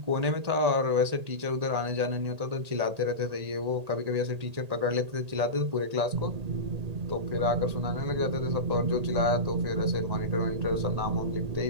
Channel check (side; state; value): left; late; 1.8 ms